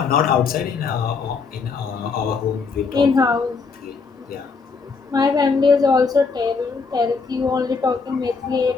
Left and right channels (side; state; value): right; quieter; 4.9 dB